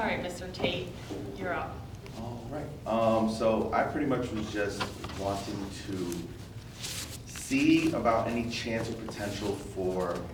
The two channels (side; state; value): both; identical; correlation 1.00